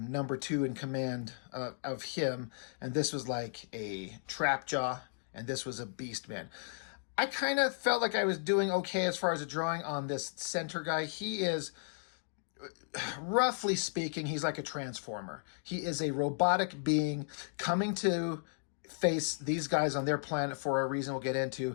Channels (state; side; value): silent; right; digital silence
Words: 2 in command of him, and this was like a Trapjaw, and this was a Beast Man. I kind of felt like I was doing okay as far as a drawing on this center guy. He is, roughly speaking, he's like a transformer. He is a robotic being coming to face these guys on their planet for a reason we'll get